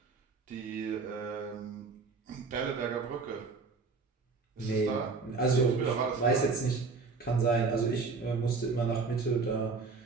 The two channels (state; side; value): quieter; left; 4.4 dB